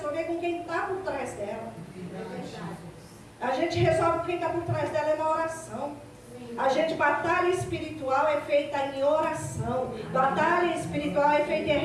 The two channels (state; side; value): identical; both; correlation 1.00